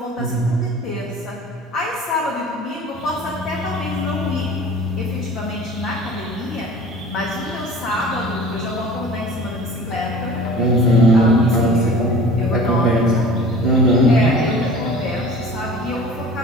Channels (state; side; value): normal; both; correlation 0.43